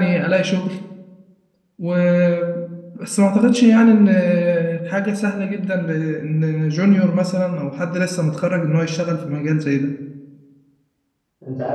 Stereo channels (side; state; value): both; identical; correlation 1.00